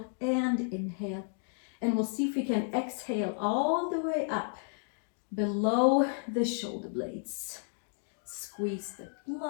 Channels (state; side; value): silent; right; 56 dB below the other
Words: and inhale. And we'll see if we can exhale all the way up below the shoulder blades. Squeeze the